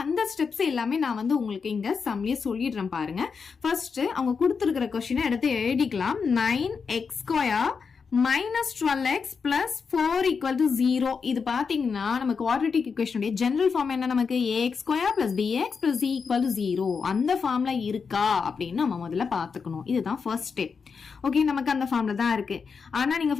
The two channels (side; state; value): right; quieter; 5.6 dB